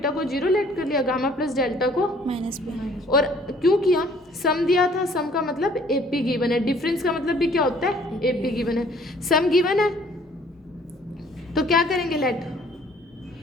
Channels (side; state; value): both; normal; correlation 0.58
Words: को 0 लेट कर लिया, गामा प्लस डेल्टा को माइनस। और क्यों किया, सम दिया था, सम का मतलब एपी गिवन है, डिफरेंस का मतलब भी क्या होता है, एपी गिवन है। सम गिवन है तो क्या करेंगे, लेट